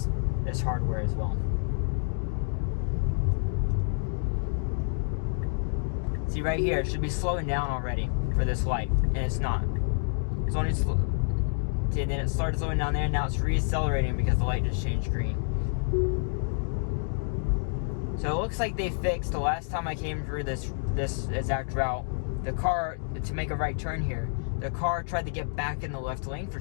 hardware as well. See right here, it should be slowing down already for this light, and it's not. It's only see, then it started slowing down there, and now it's re-accelerating because the light just changed green. So it looks like they fixed, the last time I came through this exact route, the car, to make a right turn here, the car tried to get back in the left lane for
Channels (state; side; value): silent; right; digital silence